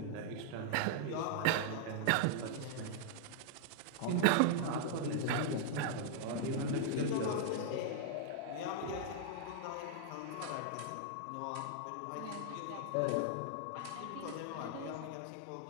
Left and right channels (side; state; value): both; different; correlation -0.01